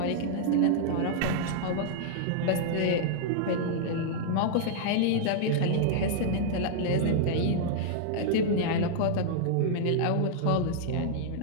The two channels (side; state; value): both; different; correlation -0.01